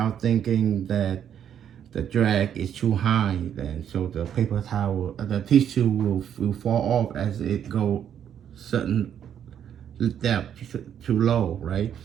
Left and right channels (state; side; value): quieter; left; 9.2 dB